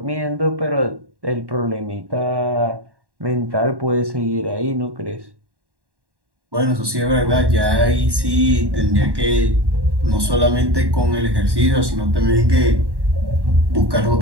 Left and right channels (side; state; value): left; late; 1.1 ms